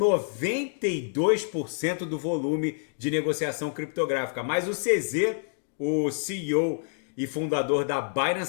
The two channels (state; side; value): silent; right; digital silence